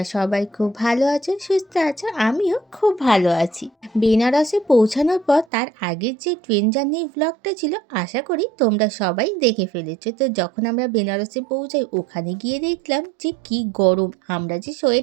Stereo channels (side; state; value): left; drops out; at 5.5 s